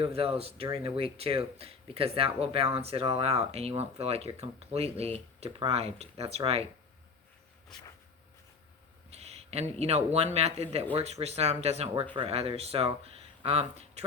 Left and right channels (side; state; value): right; quieter; 4.8 dB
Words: of those during the week too, because that will balance it all out and you won't feel like you're completely deprived. That's right. And, you know, one method that works for some doesn't work for others. So